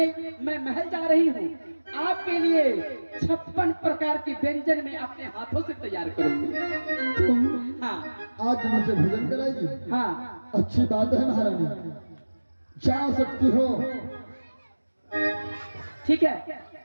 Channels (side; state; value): both; inverted; correlation -1.00